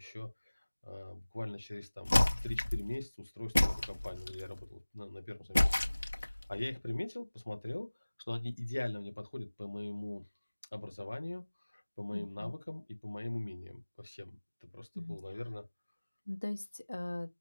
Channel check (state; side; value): inverted; both; correlation -1.00